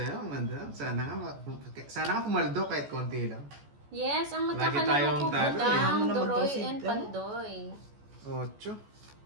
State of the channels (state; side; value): late; left; 14 ms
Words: madam. Sana nga pumaldo kahit konti lang. Yes, ang Lagi magkakalaro tayong ko, talo eh. Budang, Ano naman daw Doroy, si- and Pandoy. 8.